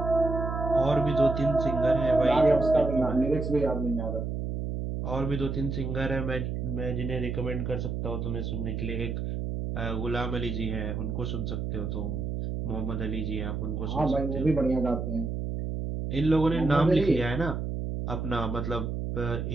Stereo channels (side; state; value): right; noise; hum, 3 dB below the sound